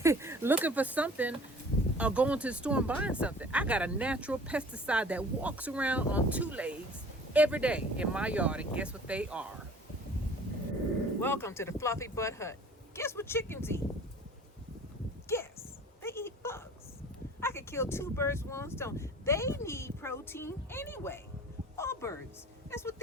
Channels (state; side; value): normal; both; correlation 0.48